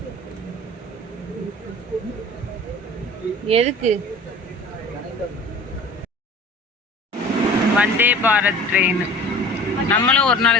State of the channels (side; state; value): both; normal; correlation 0.42